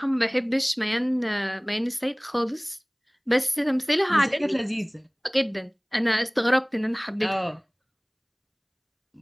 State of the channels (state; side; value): identical; both; correlation 1.00